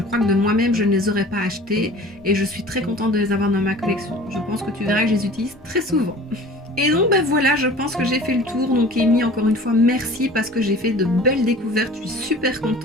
crois que de moi-même je ne les aurais pas achetés et je suis très contente de les avoir dans ma collection. Je pense que tu verras que je les utilise très souvent. Et donc voilà, je pense que j'ai fait le tour. Donc Amy, encore une fois merci parce que j'ai fait de belles découvertes, je suis super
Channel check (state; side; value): normal; both; correlation 0.43